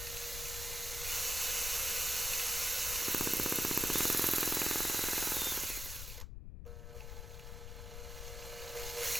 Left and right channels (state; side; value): noise; left; rumble, 9 dB below the sound